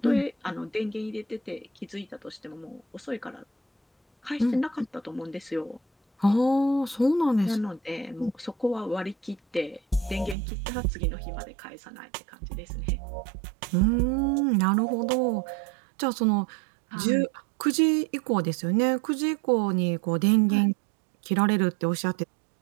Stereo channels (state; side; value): drops out; left; at 10.4 s